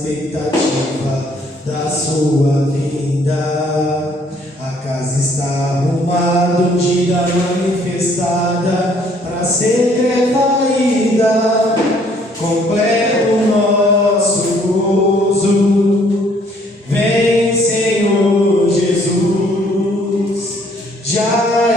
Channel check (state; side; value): normal; both; correlation 0.63